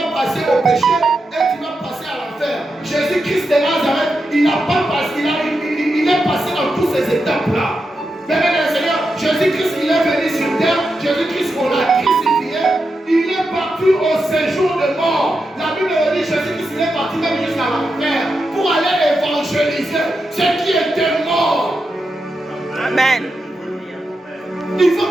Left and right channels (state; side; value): normal; both; correlation 0.87